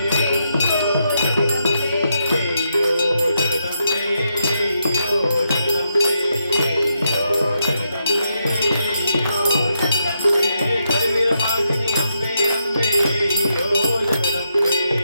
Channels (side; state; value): both; inverted; correlation -0.81